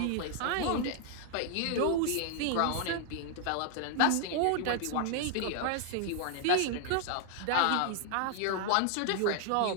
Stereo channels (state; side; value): different; both; correlation 0.00